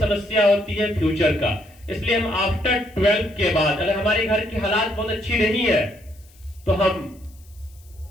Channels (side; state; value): left; noise; hiss, 28 dB below the sound